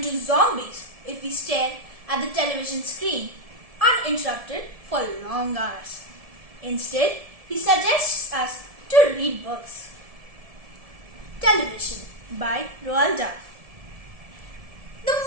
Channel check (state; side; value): late; left; 1.7 ms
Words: zombies if we stare at the television screen uninterrupted for long hours. Instead, he suggests us to read books. Television by Roald Dahl. The